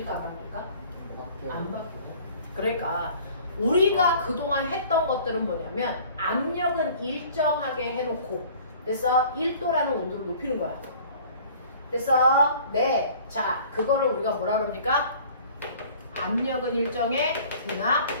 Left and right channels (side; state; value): both; inverted; correlation -0.49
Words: 안 바뀔까? 안 바뀌어. 그러니까 우리가 그동안 했던 것들은 뭐냐면 압력은 일정하게 해놓고 그래서 1도라는 온도를 높이는 거야. 그래서 네. 자, 그거를 우리가 뭐라 그럽니까? 압력은 일정해, 등압,